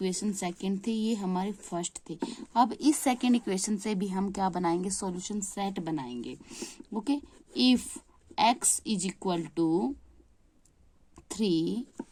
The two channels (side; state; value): both; identical; correlation 1.00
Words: सेकंड थे, ये हमारे फर्स्ट थे। अब इस सेकंड इक्वेशन से भी हम क्या बनाएंगे, सॉल्यूशन सेट बनाएंगे। Okay, if x is equal to 3